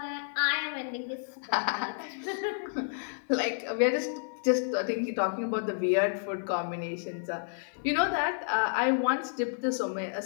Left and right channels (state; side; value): silent; right; 57 dB below the other